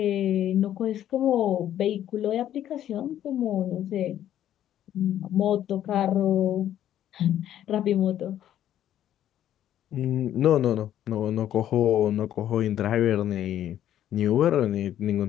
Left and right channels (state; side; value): quieter; right; 11.4 dB